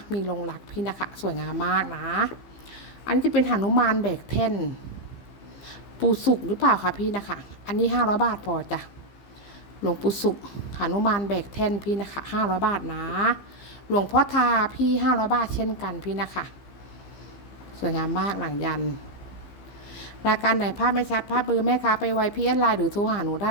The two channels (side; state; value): right; late; 15 ms